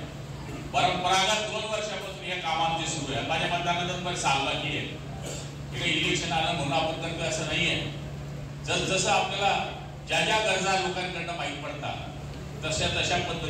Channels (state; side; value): identical; both; correlation 1.00